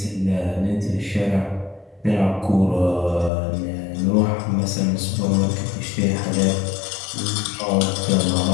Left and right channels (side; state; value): right; drops out; at 3.3 s